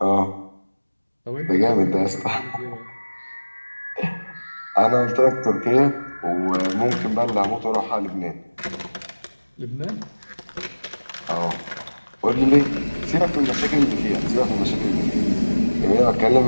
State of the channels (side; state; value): both; inverted; correlation -1.00